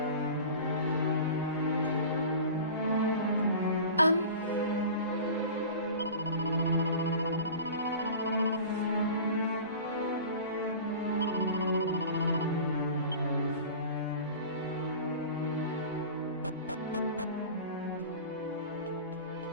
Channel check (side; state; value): both; inverted; correlation -0.37